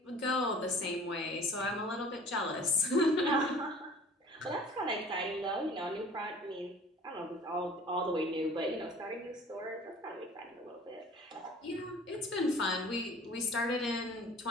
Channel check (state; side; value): normal; both; correlation 0.46